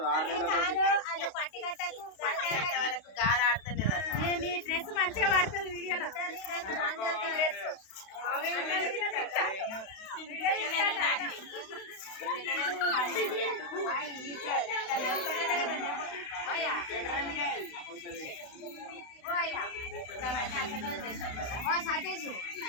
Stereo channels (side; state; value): right; late; 32 ms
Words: 6 నెలలకు గాలి ఆడతలేదు డ్రెస్ మంచిగా పడుతుంది వీడియోలో